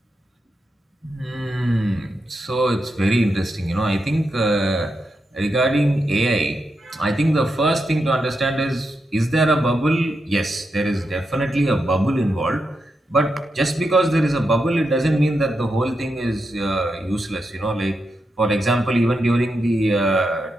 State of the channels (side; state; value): both; normal; correlation 0.86